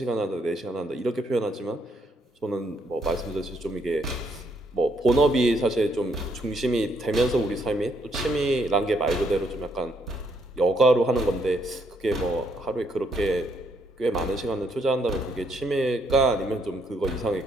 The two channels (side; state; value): both; normal; correlation 0.72